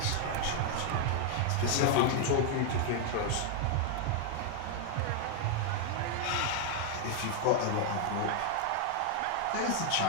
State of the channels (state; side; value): different; both; correlation 0.00